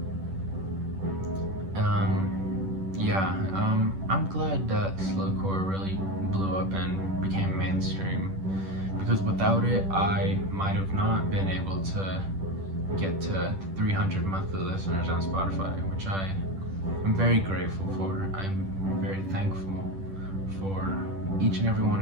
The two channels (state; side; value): late; left; 10 ms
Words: I'm glad that slowcore really blew up and became mainstream, because without it I might have not been able to get to 300 monthly listeners on Spotify, which I'm very grateful for. I'm very thankful for each and every